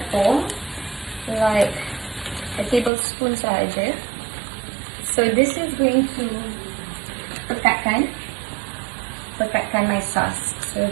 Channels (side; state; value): left; drops out; at 2.9 s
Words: like a tablespoon sahaja. So this is going to pekatkan my sauce. So